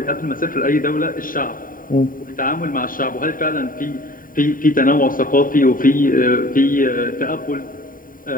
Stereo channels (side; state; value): right; late; 0.40 ms